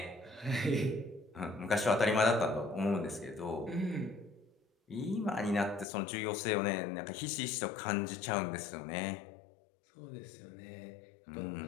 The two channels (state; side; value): drops out; right; at 5.9 s